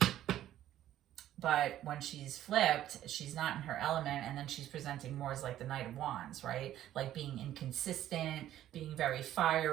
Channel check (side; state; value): left; quieter; 12.5 dB